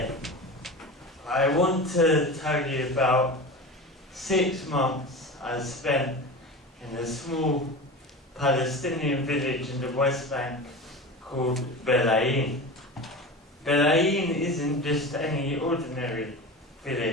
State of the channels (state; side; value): normal; both; correlation 0.30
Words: I want to tell you about 6 months I spent in a small Palestinian village in the West Bank called Betleim. Betleim isn't just any ordinary